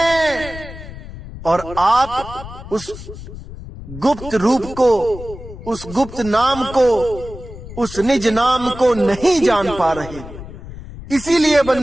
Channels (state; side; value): noise; left; rumble, 13 dB below the sound